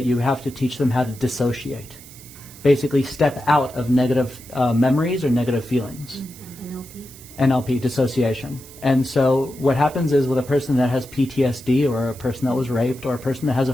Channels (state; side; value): noise; right; hiss, 19 dB below the sound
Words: you have to teach them how to dissociate. Basically step out of negative memories or negative feelings. NLP, dissociation. And so what happens is with a person that has PTSD, or a person that was raped, or a person that has a